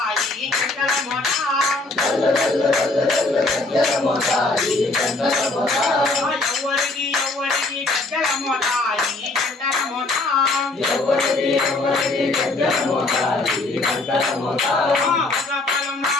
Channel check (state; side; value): quieter; right; 3.1 dB